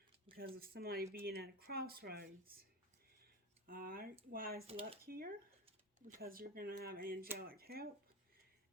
Because of somebody being at a crossroads. Alright, why is luck here? Because you're going to have angelic help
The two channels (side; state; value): both; normal; correlation 0.22